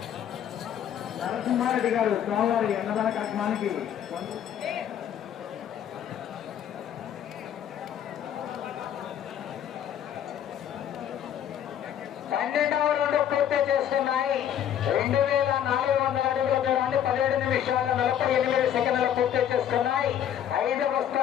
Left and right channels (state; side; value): quieter; right; 10.0 dB